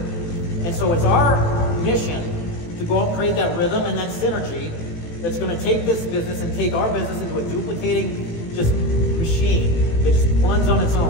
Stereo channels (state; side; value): late; right; 18 ms